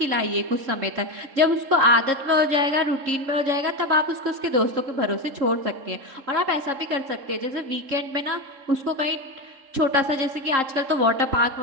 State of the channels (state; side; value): late; left; 3.7 ms